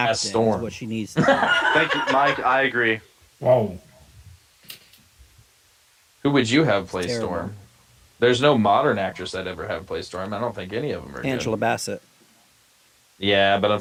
Is Storm. what she needs to do. Thank you, Mike. I agree. Whoa. Who would you have play Terrible. Storm? There's no modern actress I'd ever have play Storm. I don't think any of them are Angela good. Bassett. Yeah, but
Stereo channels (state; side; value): identical; both; correlation 1.00